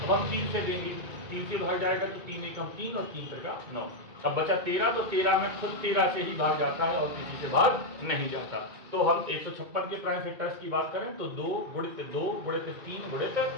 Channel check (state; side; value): late; left; 2.2 ms